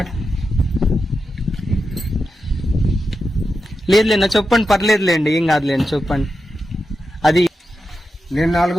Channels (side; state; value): both; normal; correlation 0.89